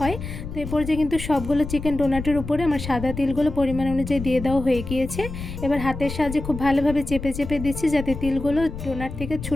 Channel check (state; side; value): noise; left; rumble, 8 dB below the sound